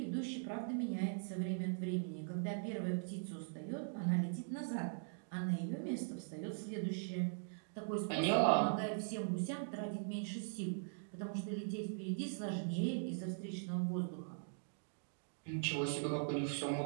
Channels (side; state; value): left; silent; digital silence